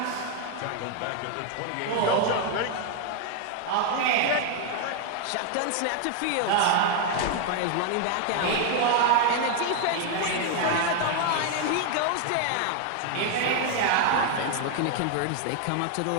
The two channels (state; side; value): different; both; correlation 0.00